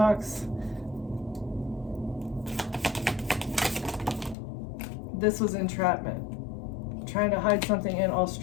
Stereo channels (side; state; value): right; drops out; at 4.4 s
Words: This was entrapment. Trying to hide something in